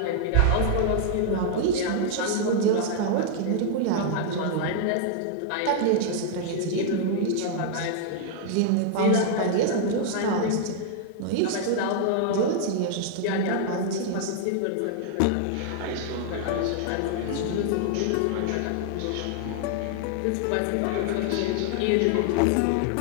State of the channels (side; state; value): both; different; correlation -0.01